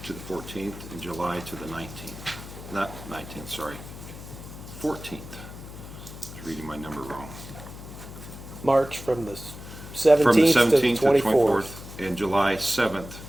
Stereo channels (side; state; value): left; noise; hum, 13 dB below the sound